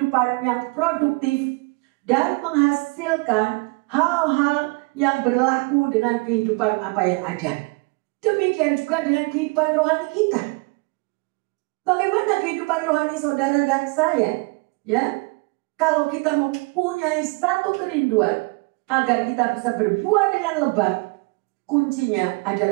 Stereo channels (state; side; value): quieter; left; 29.3 dB